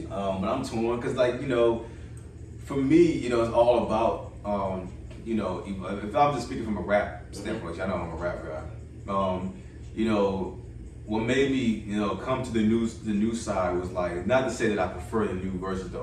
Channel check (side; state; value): both; identical; correlation 1.00